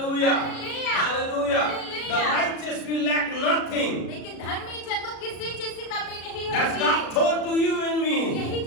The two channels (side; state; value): right; late; 36 ms